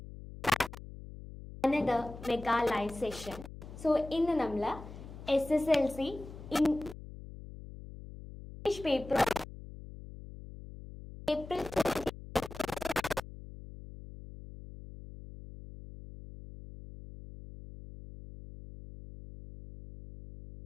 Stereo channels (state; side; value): noise; left; hum, 14 dB below the sound